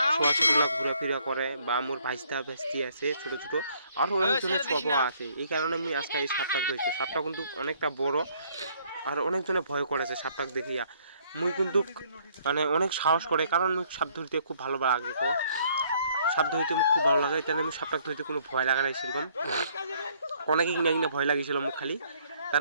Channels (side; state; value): both; inverted; correlation -0.64